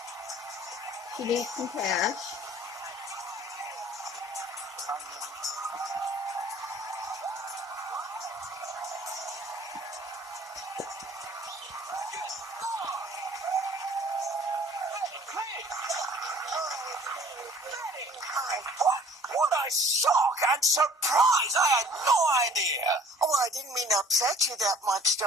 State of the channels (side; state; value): both; normal; correlation 0.52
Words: She needs some cash. What a shock and surprise! I had no idea. Oh, I didn't mean to upset you that much,